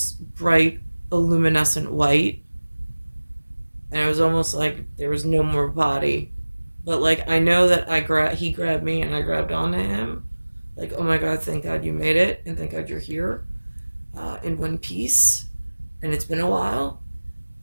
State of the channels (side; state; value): both; inverted; correlation -1.00